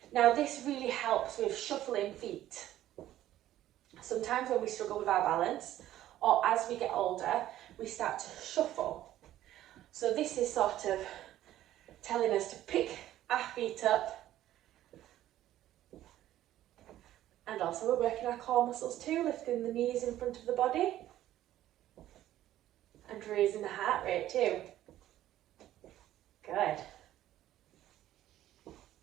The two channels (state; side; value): quieter; left; 13.3 dB